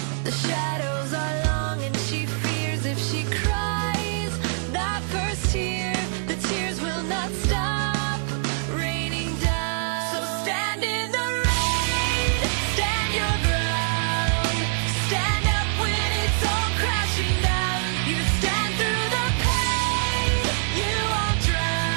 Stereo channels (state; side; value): silent; left; digital silence